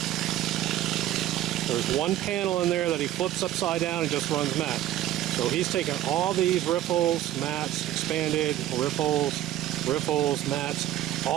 There's one panel in there that he flips upside down and just runs mats. So he's taken all these riffles, mats, expanded, riffles, mats.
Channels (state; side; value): quieter; left; 13.0 dB